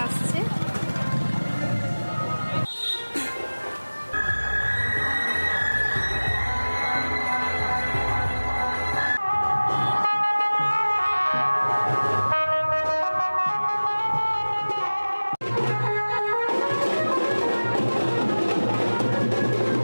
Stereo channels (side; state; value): both; inverted; correlation -1.00